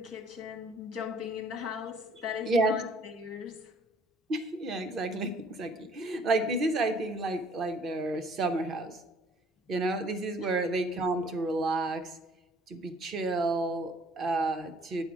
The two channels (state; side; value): normal; both; correlation 0.58